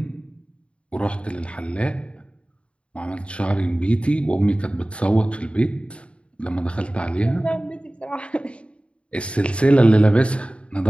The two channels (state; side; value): late; right; 0.059 ms